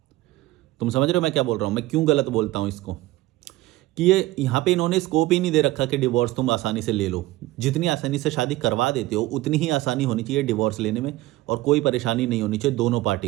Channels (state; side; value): quieter; left; 17.4 dB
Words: तुम समझ रहे हो मैं क्या बोल रहा हूँ, मैं क्यों गलत बोलता हूँ इसको, कि ये यहाँ पे इन्होंने स्कोप ही नहीं दे रखा कि डिवोर्स तुम आसानी से ले लो। जितनी आसानी से शादी करवा देते हो उतनी ही आसानी होनी चाहिए डिवोर्स लेने में, और कोई परेशानी नहीं होनी चाहिए दोनों पार्टी